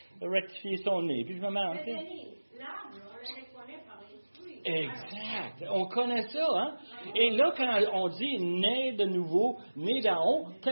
rectifier son nez. Puis je me demande, exact. On connaît ça, hein? Et là, quand on dit né de nouveau, né d'en haut,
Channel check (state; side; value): inverted; both; correlation -1.00